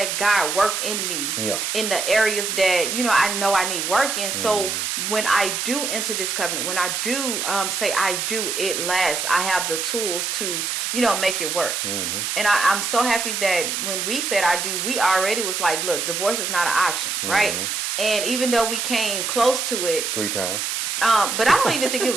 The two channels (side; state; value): right; noise; hiss, 1 dB below the sound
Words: God work in me in the areas that, I know I need work in. So when I do enter this covenant, when I do say I do, it lasts. I have the tools to, make it work. And I'm so happy that when we said I do, we already was like, look, divorce is not an option, right? And even though we came close to it. 3 times. But I don't even think it